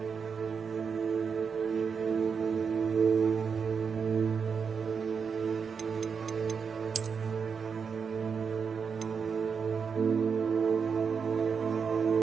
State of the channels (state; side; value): quieter; left; 6.0 dB